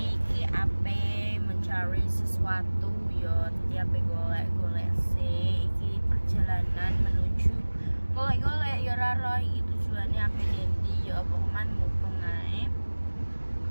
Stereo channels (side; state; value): both; inverted; correlation -1.00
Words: iki ape mencari sesuatu yo. Jadi ape golek-golek sih. Iki perjalanan menuju golek-golek yo raro iki tujuannya ape dendi yo pokoknya mumpung ae.